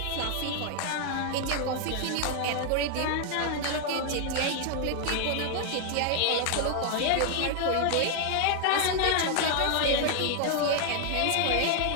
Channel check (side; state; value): both; different; correlation 0.00